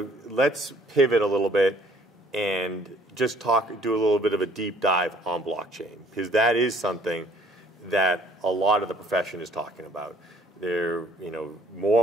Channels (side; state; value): both; normal; correlation 0.58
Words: let's pivot a little bit and just do a little bit of a deep dive on blockchain, because that is something that a lot of the profession is talking about. They're,